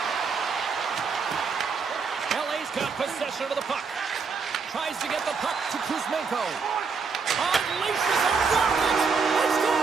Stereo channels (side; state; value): left; quieter; 5.2 dB